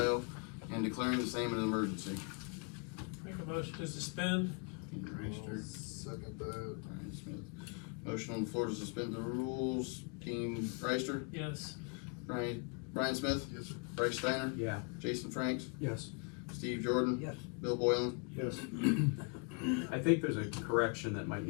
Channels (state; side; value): quieter; right; 36.1 dB